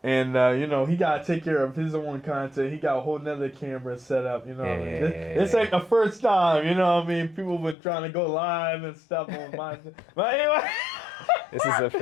And, you know, he got to take care of his own content. He got a whole nother camera set up, you know what I mean? This ain't the first time, you know what I mean? People been trying to go live and stuff on my... But anyway... This is a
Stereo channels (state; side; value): drops out; right; at 7.8 s